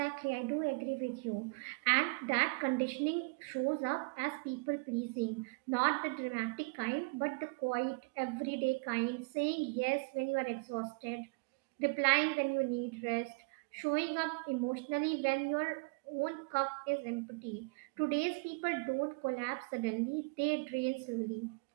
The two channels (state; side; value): quieter; left; 32.2 dB